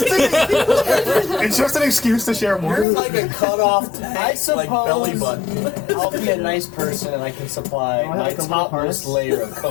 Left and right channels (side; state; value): right; drops out; at 2.9 s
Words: it's just an excuse to share more. You're like a cut off I like belly suppose button. I'll be a nice person and I can supply Oh, I my like a little topmost harness. layer of